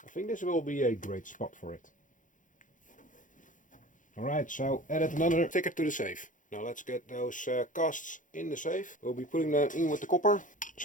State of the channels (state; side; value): late; right; 0.38 ms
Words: I think this will be a great spot for it. Alright, so added another sticker to the safe. Now let's get those casts in the safe. We'll be putting them in with the copper.